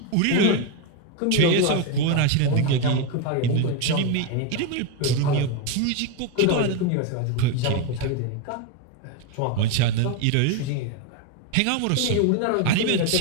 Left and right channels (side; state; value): both; different; correlation 0.02